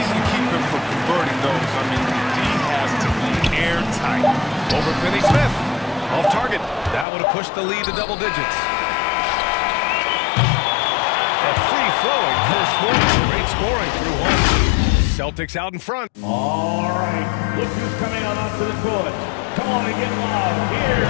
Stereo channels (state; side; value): drops out; right; at 7.1 s